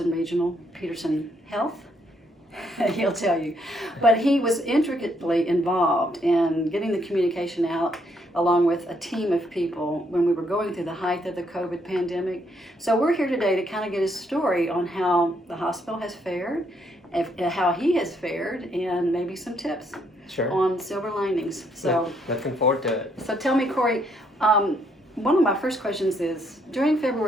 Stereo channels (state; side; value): normal; both; correlation 0.72